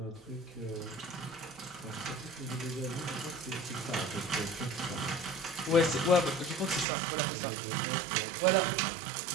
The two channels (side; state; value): left; drops out; at 6.9 s